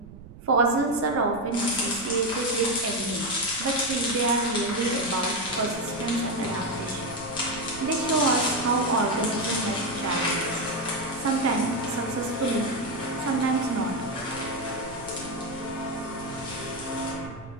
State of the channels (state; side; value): noise; right; rumble, 16 dB below the sound